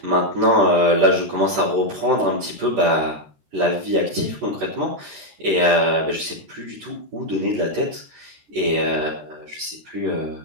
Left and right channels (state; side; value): late; left; 13 ms